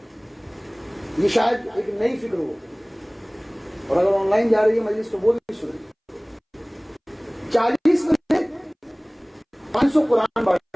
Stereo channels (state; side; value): identical; both; correlation 1.00